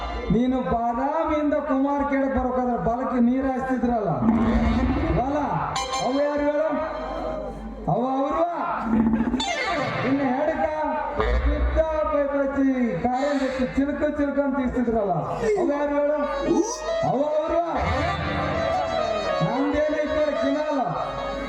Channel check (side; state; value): both; identical; correlation 1.00